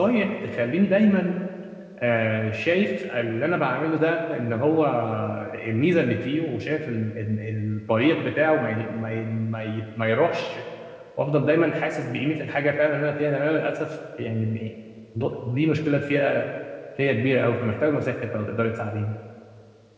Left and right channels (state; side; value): identical; both; correlation 1.00